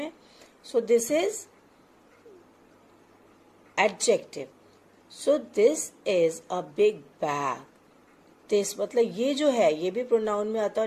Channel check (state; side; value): identical; both; correlation 1.00